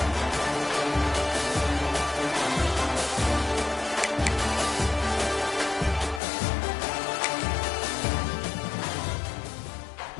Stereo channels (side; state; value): right; drops out; at 6.2 s